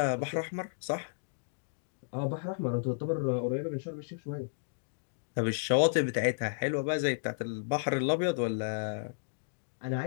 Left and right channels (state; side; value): silent; right; digital silence